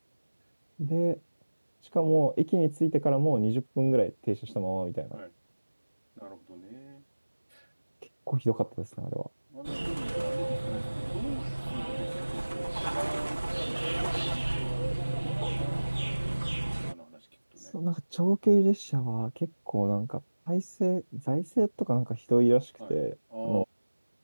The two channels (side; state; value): both; inverted; correlation -1.00